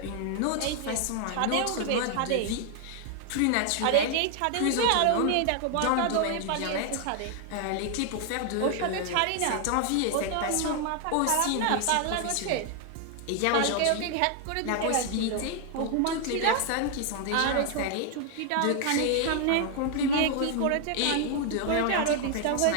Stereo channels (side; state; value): both; different; correlation 0.00